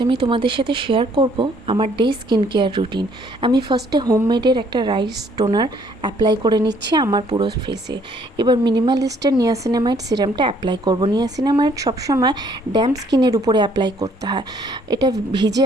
আমি তোমাদের সাথে শেয়ার করব আমার ডে স্কিন কেয়ার রুটিন। আমি ফার্স্টে হোমমেডের একটা রাইস টোনার অ্যাপ্লাই করে নিচ্ছি আমার পুরো ফেসে। এবার মিনিমালিস্টের নিয়াসিনামাইড সিরামটা অ্যাপ্লাই করব। নিয়াসিনামাইড সবসময় ড্যাম্প স্কিনের উপরে অ্যাপ্লাই করতে হয়। এটা ভিজে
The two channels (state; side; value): normal; both; correlation 0.63